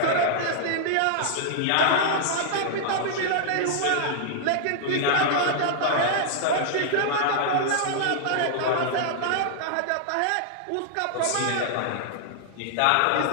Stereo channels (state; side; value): different; both; correlation -0.01